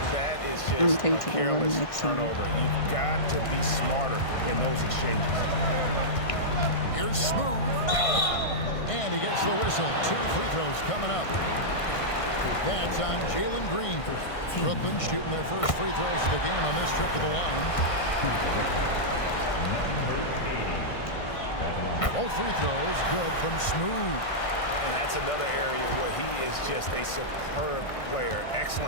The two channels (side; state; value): right; late; 1.5 ms